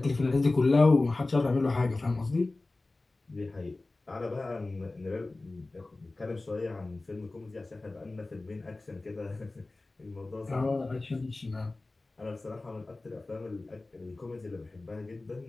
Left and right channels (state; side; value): quieter; right; 3.1 dB